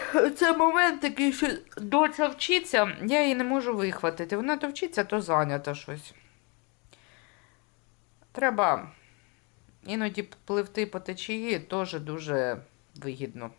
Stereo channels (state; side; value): quieter; right; 31.5 dB